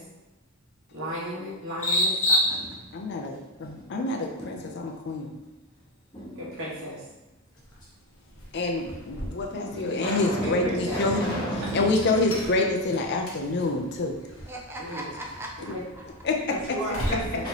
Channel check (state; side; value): normal; both; correlation 0.10